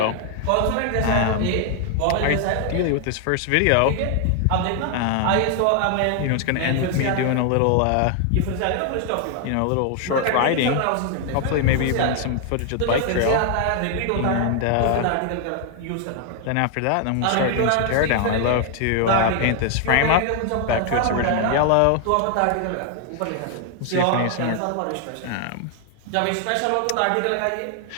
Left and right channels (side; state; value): both; different; correlation 0.00